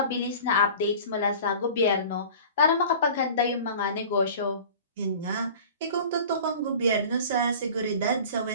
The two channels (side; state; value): both; inverted; correlation -0.41